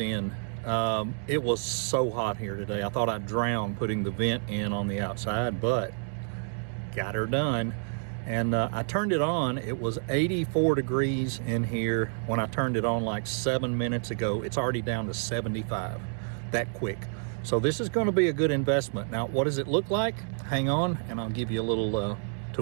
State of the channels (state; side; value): silent; left; 59 dB below the other